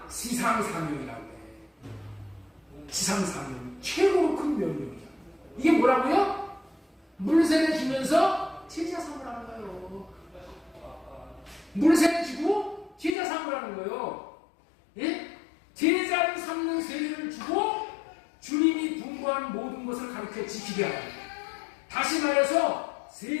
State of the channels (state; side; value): drops out; right; at 13.2 s